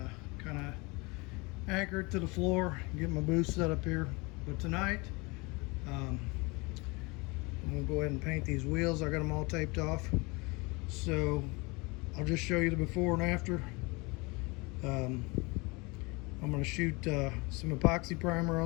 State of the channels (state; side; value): quieter; right; 26.6 dB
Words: kind of anchor it to the floor, get my booth set up here. But tonight I'm gonna go ahead and paint these wheels. I got them all taped off, so I'll just show you the before and after. I'm gonna shoot some epoxy primer